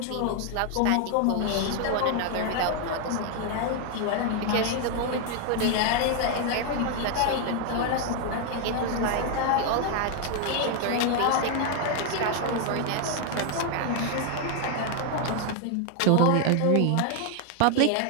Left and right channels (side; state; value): both; different; correlation 0.00